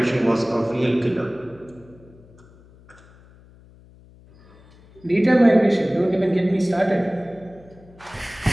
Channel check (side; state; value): left; noise; hum, 25 dB below the sound